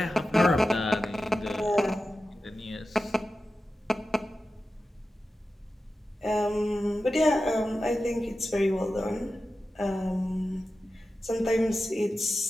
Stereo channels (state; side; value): normal; both; correlation 0.93